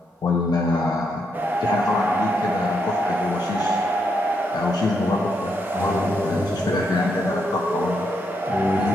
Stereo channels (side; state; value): both; normal; correlation 0.79